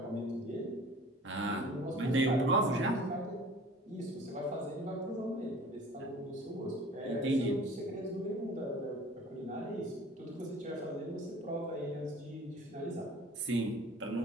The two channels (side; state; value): both; normal; correlation 0.46